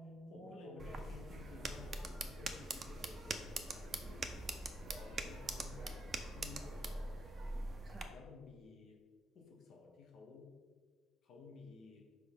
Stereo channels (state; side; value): normal; both; correlation 0.81